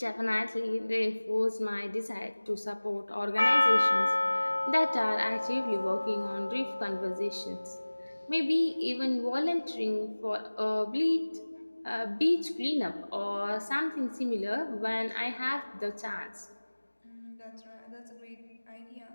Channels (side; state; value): both; inverted; correlation -1.00